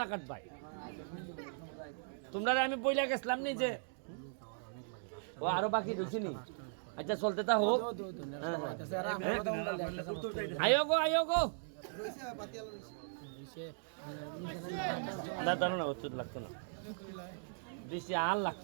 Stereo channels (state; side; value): silent; left; digital silence